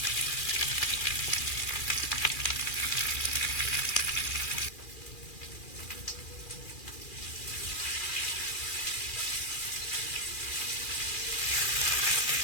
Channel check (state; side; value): late; right; 2.4 ms